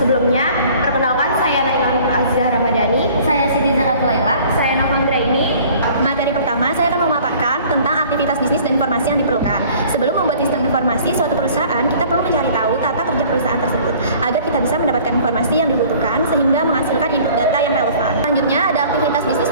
perkenalkan saya Naila Nur Azizah Ramadhani. Saya Siti Zakatul Laila. Saya Navandra ini. Materi pertama, saya akan memaparkan tentang aktivitas bisnis dan informasi yang diperlukan. Sebelum membuat sistem informasi suatu perusahaan, kita perlu mencari tahu tata kerja perusahaan tersebut agar kita bisa mendapatkan informasi yang dibutuhkan sehingga menghasilkan input data yang relevan. Selanjutnya, ada aktivitas bisnis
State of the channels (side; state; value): both; inverted; correlation -0.51